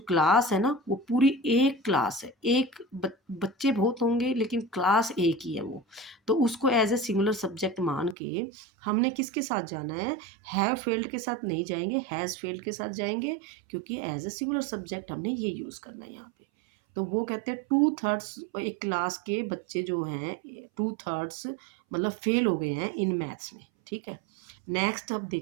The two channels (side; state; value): left; drops out; at 8.2 s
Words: क्लास है ना वो पूरी एक क्लास है, एक बच्चे बहुत होंगे लेकिन क्लास एक ही है वो, तो उसको एज ए सिंगुलर सब्जेक्ट मान के हमने किसके साथ जाना है, हैव फेल्ड के साथ नहीं जाएंगे, हैज़ फेल्ड के साथ जाएंगे, क्योंकि एज ए सिंगुलर सब्जेक्ट हमने ये यूज़ करना है यहाँ पे। तो वो कहते हैं 2/3 एक क्लास के बच्चे जो हैं 2/3 मतलब फेल हो गए हैं इन मैथ्स में, ठीक है। नेक्स्ट अब